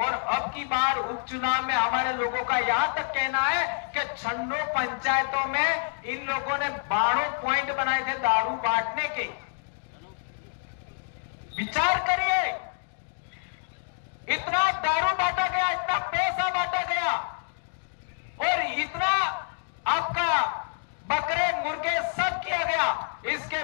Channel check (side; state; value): right; silent; digital silence